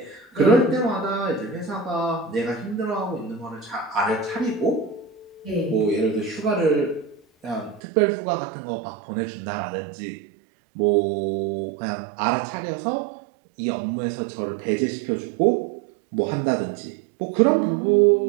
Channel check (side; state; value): left; drops out; at 7.8 s